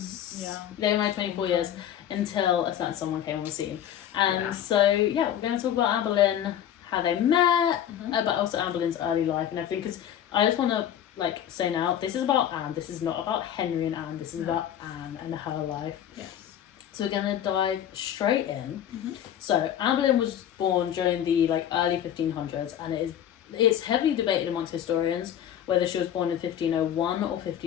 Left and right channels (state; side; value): quieter; right; 10.3 dB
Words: Yeah. They were married 24 years until a certain someone came on the scene. And so, we're going to talk about Anne Boleyn, how they met, but also Anne Boleyn's early life and everything, because I just want to say now, this is about Anne, this is not about Henry and Anne, this is about Anne and her life. Yes. So we're going to dive straight in. So Anne Boleyn was born during the early 1500s, and it's heavily debated amongst historians whether she was born in 1501 or